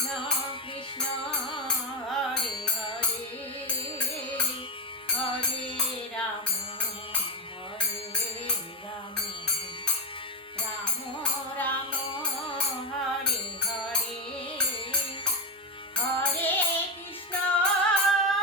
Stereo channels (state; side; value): normal; both; correlation 0.13